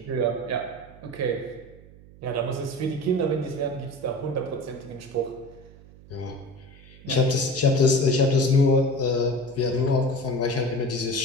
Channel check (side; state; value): right; noise; hum, 22 dB below the sound